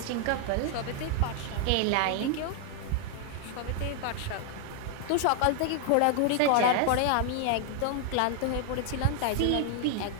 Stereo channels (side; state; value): both; different; correlation 0.00